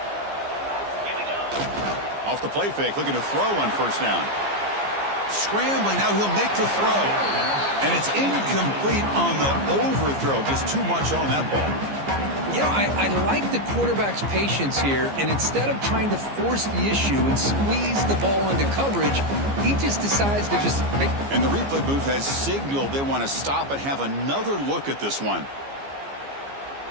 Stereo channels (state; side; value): late; left; 15 ms